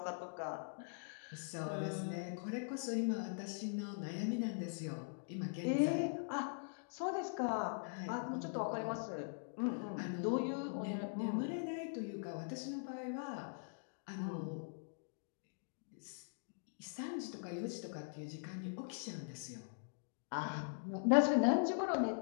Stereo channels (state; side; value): silent; right; digital silence